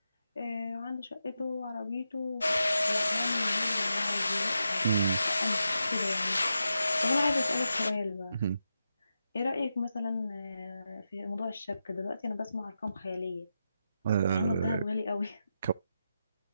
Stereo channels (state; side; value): inverted; both; correlation -0.88